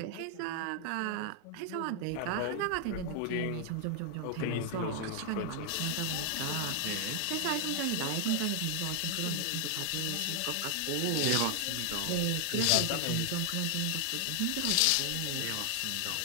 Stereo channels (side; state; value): both; different; correlation 0.00